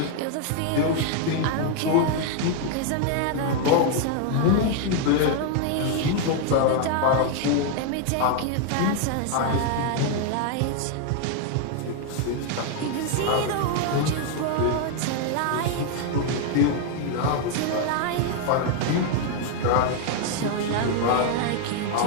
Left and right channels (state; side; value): different; both; correlation 0.00